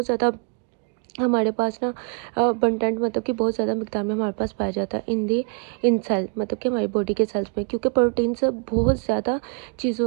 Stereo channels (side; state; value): left; quieter; 39.0 dB